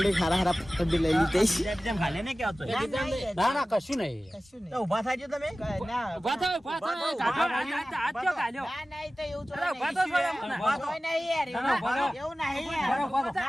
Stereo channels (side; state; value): both; normal; correlation 0.96